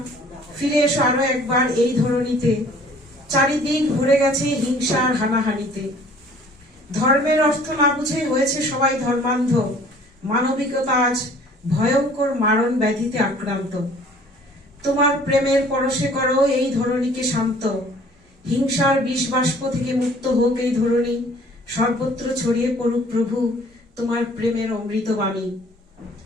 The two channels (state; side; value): normal; both; correlation 0.53